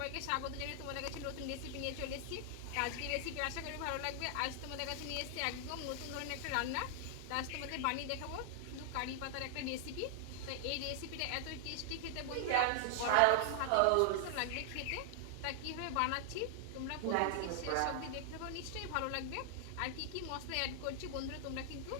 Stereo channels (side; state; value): both; different; correlation 0.00